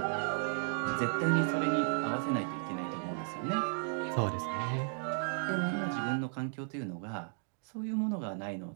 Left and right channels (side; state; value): left; silent; 55 dB below the other